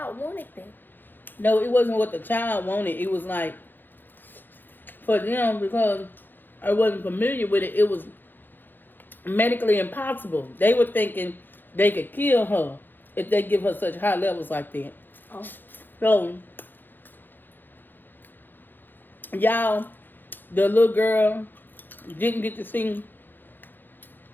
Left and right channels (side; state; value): right; late; 0.092 ms